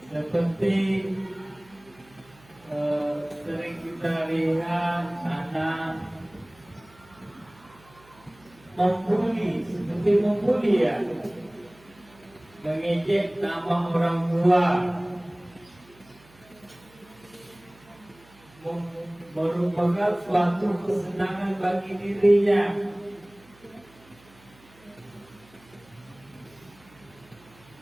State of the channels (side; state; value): right; noise; hum, 27 dB below the sound